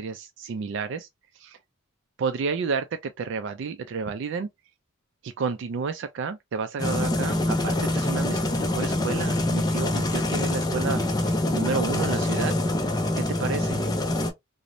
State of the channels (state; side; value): normal; both; correlation 0.52